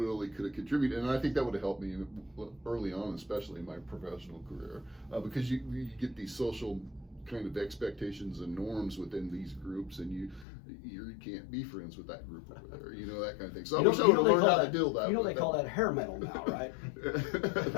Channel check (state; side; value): drops out; right; at 10.5 s